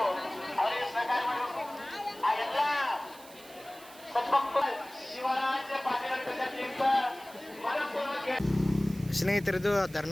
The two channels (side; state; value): right; noise; hiss, 20 dB below the sound